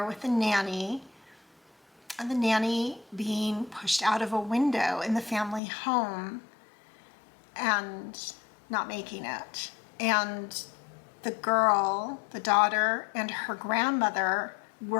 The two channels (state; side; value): drops out; right; at 5.6 s